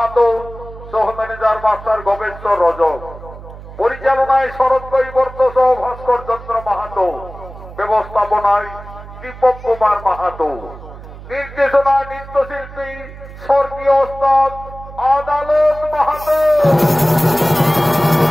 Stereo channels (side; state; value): right; noise; hum, 15 dB below the sound